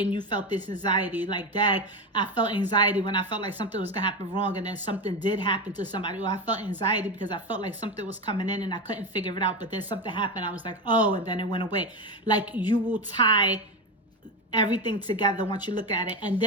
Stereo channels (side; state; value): both; normal; correlation 0.17